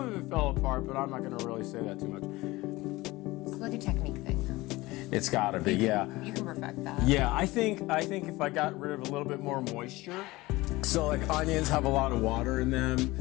of it fell apart, but I'm not going to really say that too much. It's like a technique thing. It's got to be, yeah. You can perfect that. Yeah, I think if I got rid of a little bit more moisture. So like onions have a lot of water in them.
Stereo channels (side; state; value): right; quieter; 20.2 dB